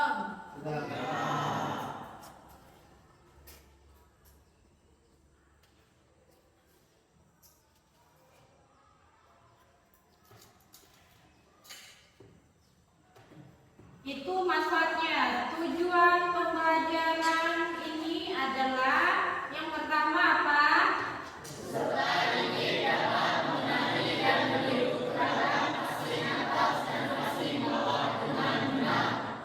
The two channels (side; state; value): both; identical; correlation 1.00